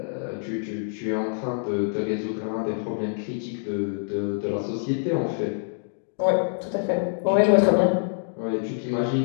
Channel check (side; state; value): right; silent; digital silence